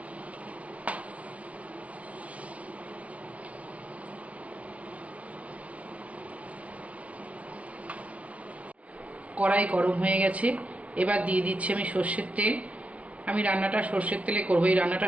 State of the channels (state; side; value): late; left; 0.065 ms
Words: কড়াই গরম হয়ে গেছে, এবার দিয়ে দিচ্ছি আমি সর্ষের তেল। আমি রান্নাটা সর্ষের তেলে করবো, এই রান্নাটা